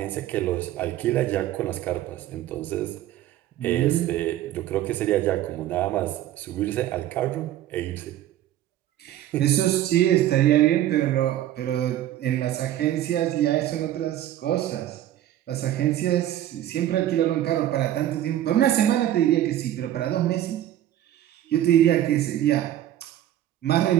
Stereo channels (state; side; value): quieter; left; 12.7 dB